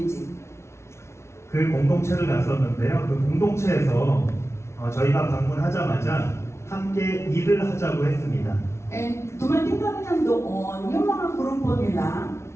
그 공동체를 갔었는데요. 그 공동체에서 저희가 방문하자마자 함께 일을 하자고 했습니다. And dumating kami ng doon, yung mga grupo nila,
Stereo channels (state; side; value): late; right; 0.13 ms